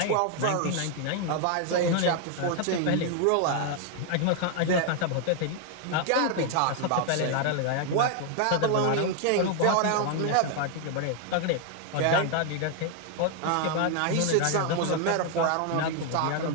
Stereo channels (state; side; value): different; both; correlation 0.00